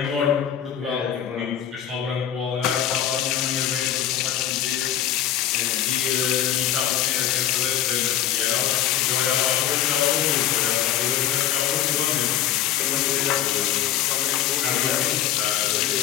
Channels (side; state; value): right; quieter; 11.1 dB